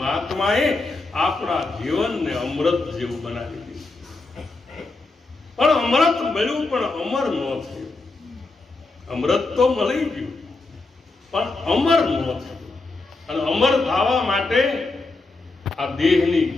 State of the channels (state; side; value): quieter; right; 3.3 dB